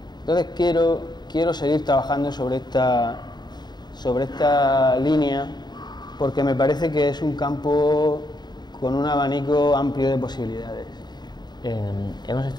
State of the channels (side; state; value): right; late; 0.21 ms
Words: Entonces quiero seguir trabajando sobre esta línea, porque me parece que es un campo con un abanico amplio de posibilidades. Hemos